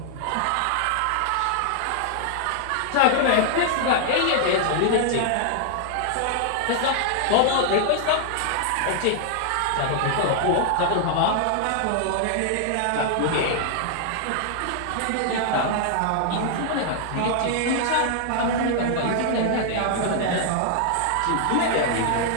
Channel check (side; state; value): both; different; correlation -0.01